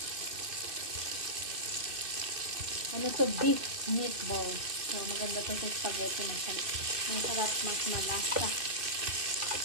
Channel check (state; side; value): late; left; 2.6 ms